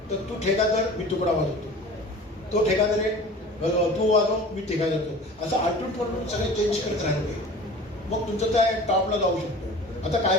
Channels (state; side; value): normal; both; correlation 0.41